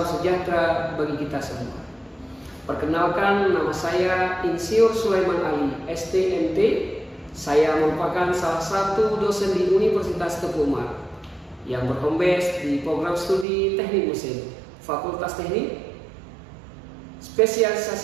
sejahtera bagi kita semua. Perkenalkan, nama saya Insinyur Sulaiman Ali, STMT. Saya merupakan salah satu dosen di Universitas Teguh Umar yang berhome base di program studi Teknik Mesin, Fakultas Teknik.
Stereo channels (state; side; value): drops out; left; at 13.5 s